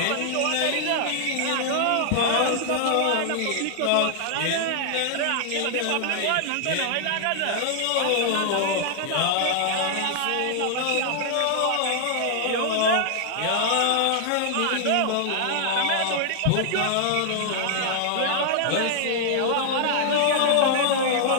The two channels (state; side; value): different; both; correlation -0.01